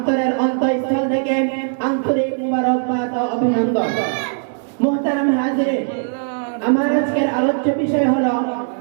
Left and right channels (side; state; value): left; silent; digital silence